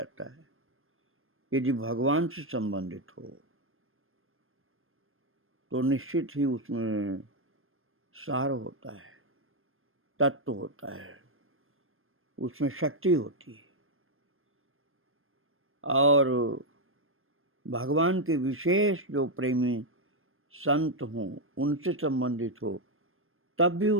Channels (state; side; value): late; left; 0.60 ms